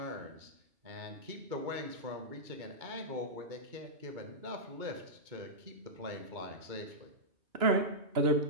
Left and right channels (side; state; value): left; late; 2.2 ms